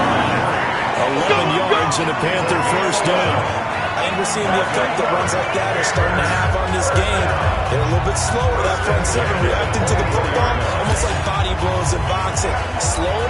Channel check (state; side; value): identical; both; correlation 1.00